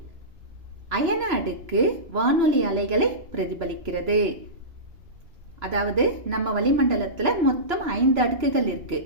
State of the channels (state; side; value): late; left; 2.9 ms